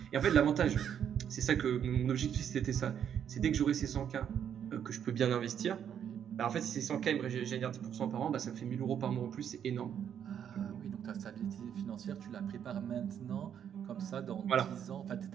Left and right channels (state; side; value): quieter; left; 8.8 dB